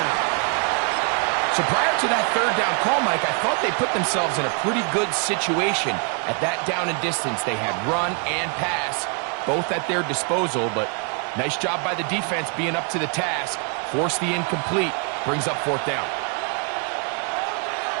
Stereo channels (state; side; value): quieter; left; 38.8 dB